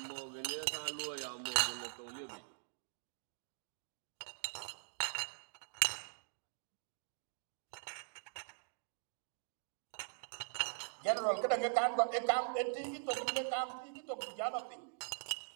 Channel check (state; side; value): silent; left; digital silence